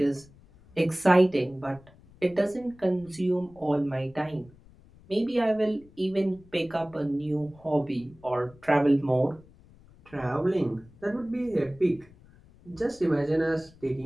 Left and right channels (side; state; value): left; noise; rumble, 25 dB below the sound